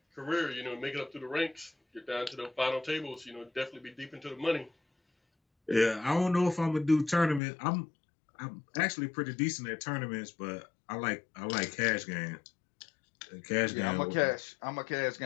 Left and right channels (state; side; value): drops out; right; at 7.4 s